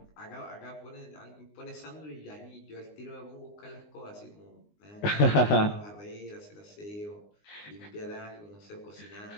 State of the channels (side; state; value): right; late; 19 ms